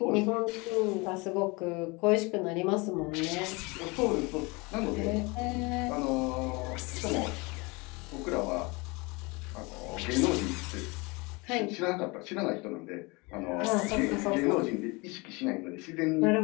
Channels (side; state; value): right; quieter; 26.5 dB